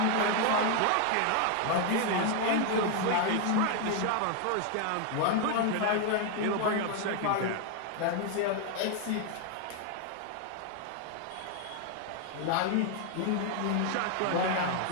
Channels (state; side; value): different; both; correlation 0.01